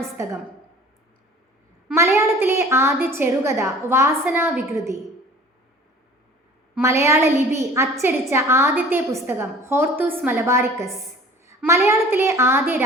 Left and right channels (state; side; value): normal; both; correlation 0.46